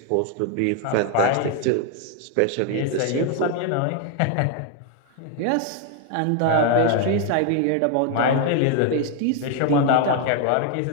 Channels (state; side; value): different; both; correlation 0.00